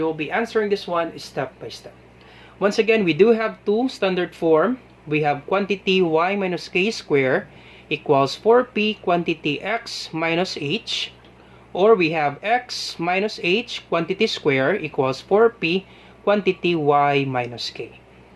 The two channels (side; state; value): both; identical; correlation 1.00